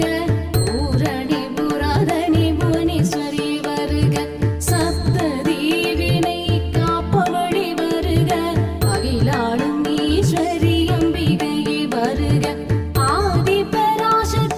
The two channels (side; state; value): both; identical; correlation 1.00